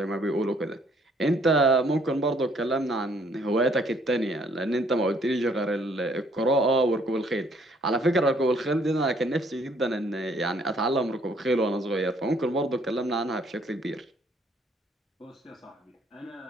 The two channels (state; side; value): normal; both; correlation 0.64